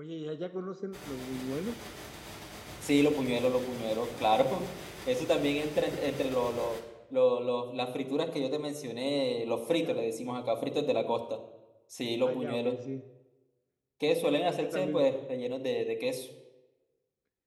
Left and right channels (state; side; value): identical; both; correlation 1.00